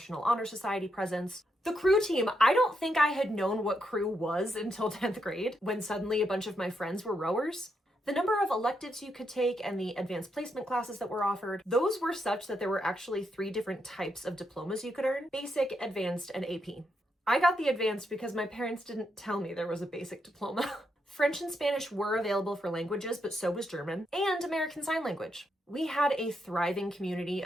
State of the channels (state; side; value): normal; both; correlation 0.81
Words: Honor Society presence. The crew team, I don't think I had known what crew was until 10th grade, when suddenly a bunch of my friends were rowers. The number of electives you could take and the advanced placement classes that were offered, those were such that there were actually 3 different types of diplomas you could earn: basic, advanced, and AP. I got the advanced because my parents didn't tell me there was a basic diploma. French and Spanish were available for languages, but so was German and American Sign Language. We had a thriving community